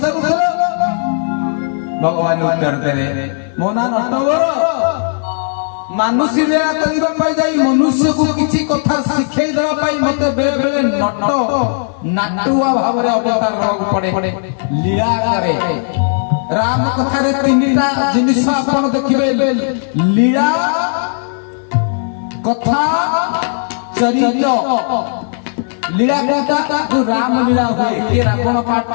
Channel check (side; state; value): right; silent; digital silence